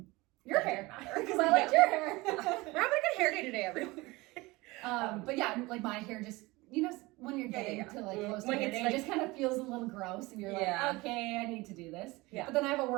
Your hair, because I liked your hair. We're having a good hair day today, everyone. But yeah, like my hair just, when you're getting to like close to when hair it's day, like, it just kind of feels a little gross, and you're like, okay, I need to do this. Yeah. But then I have a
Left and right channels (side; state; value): left; quieter; 22.1 dB